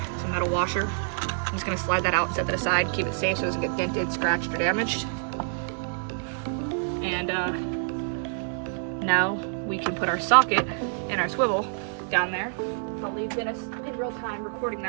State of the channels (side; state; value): left; silent; digital silence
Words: it's a metal washer. I'm just gonna slide that out and set that aside, keep it safe so it doesn't get dented, scratched, or damaged. And now we can put our socket and our swivel down there. I'll leave Dennis in real time recording